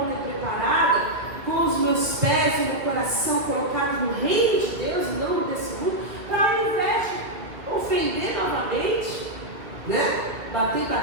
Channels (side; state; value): left; late; 2.1 ms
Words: e preparada, com os meus pés e meu coração colocados no reino de Deus e não desse mundo, para ao invés de ofender novamente, né? Bater,